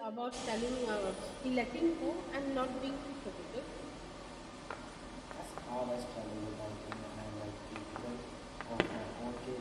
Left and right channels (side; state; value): both; identical; correlation 1.00